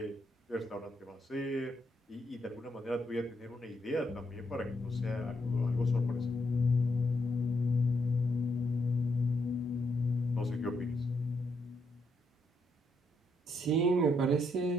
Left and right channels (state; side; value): normal; both; correlation 0.77